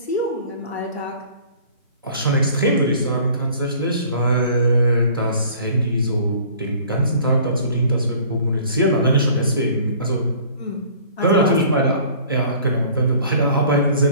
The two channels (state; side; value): inverted; both; correlation -0.50